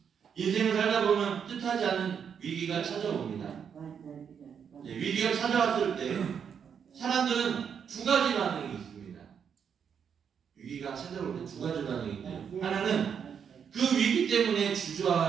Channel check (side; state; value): left; quieter; 7.4 dB